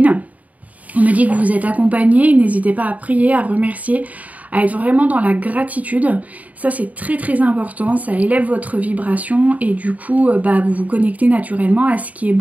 On me dit que vous êtes accompagnées, n'hésitez pas à prier, à remercier, à être vraiment dans la gratitude. Ça c'est très très important, ça élève votre vibration, et du coup vous vous connectez naturellement à ce qui est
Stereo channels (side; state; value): left; late; 0.072 ms